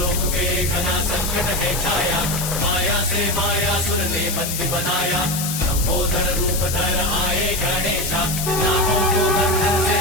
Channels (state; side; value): noise; left; hiss, 4 dB below the sound